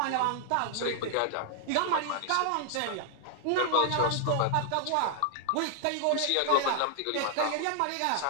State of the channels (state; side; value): different; both; correlation -0.01